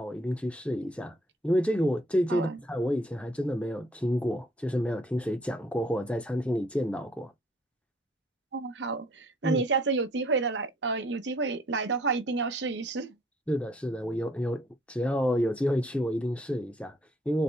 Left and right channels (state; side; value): normal; both; correlation 0.62